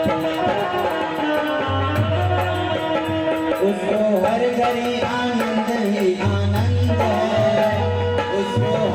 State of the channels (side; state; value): both; identical; correlation 1.00